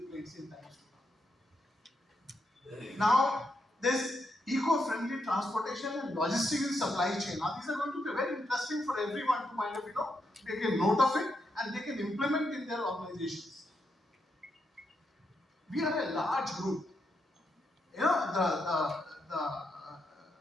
plates in times to come. Now, there's eco-friendly transportation and logistics in supply chain. Now, these are going to be very interesting for everyone to kind of, take a note of it and they can implement in their organizations. We are a large group. You know,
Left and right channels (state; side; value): normal; both; correlation 0.81